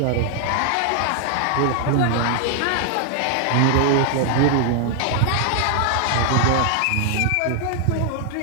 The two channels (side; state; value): both; different; correlation 0.00